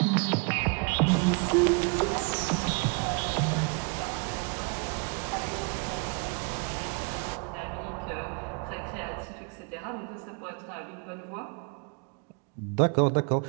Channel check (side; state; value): left; quieter; 33.7 dB